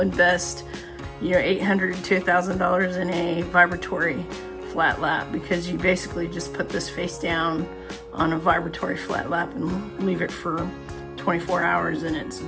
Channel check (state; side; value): identical; both; correlation 1.00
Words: $800 to $1,000 in a vibratory flat lap, because you basically just put this face down on a vibratory flat lap and leave it for 24 hours and it's